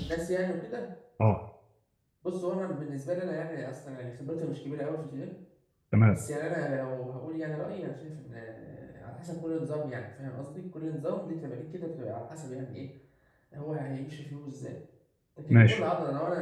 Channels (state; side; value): identical; both; correlation 1.00